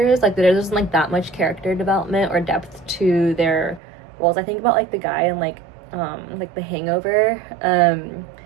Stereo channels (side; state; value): left; drops out; at 3.8 s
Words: Like there wasn't like that much character development or depth to their roles. I think about like the guy in like The Hangover,